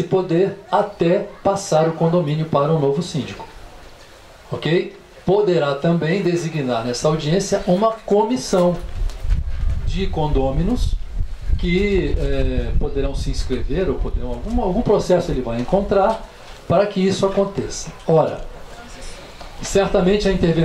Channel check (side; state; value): both; identical; correlation 1.00